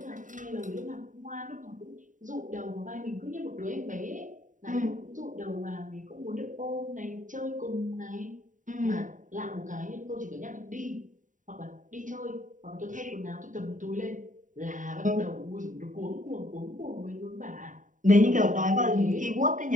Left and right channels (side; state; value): left; late; 0.37 ms